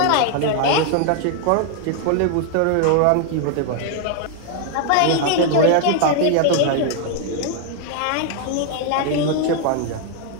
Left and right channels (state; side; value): different; both; correlation 0.00